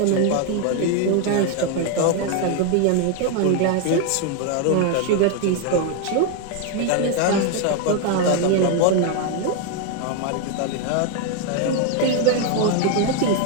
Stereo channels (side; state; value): both; different; correlation 0.01